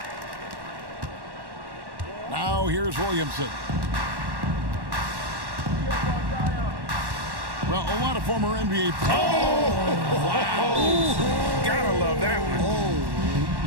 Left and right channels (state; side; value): late; left; 1.1 ms